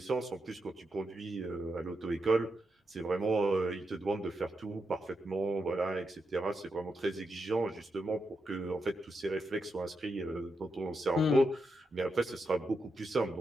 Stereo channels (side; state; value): both; normal; correlation 0.85